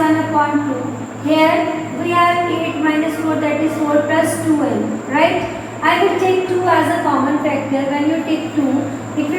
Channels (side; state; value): both; identical; correlation 1.00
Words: upon 2. Here we have 8 minus 4, that is 4 plus 2n. Right? I will take 2 as a common factor. When you take 2, it